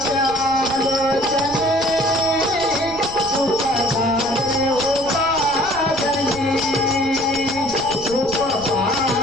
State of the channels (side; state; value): right; noise; rumble, 16 dB below the sound